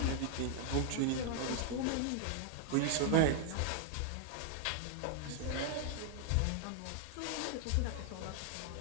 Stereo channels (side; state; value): both; different; correlation 0.00